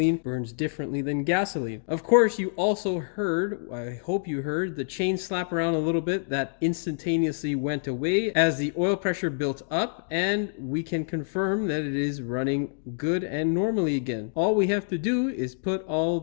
burns differently than gasoline. Of course, you also heard, I hope you heard, the chain slap around a little bit. That instantaneously went away as the oil pressure built up, and we can confirm that it is running good and normally again. All we have to do is put all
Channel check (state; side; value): silent; right; digital silence